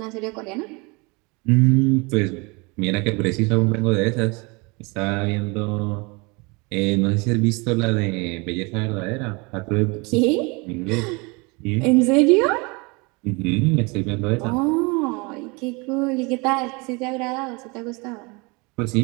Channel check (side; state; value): left; quieter; 28.2 dB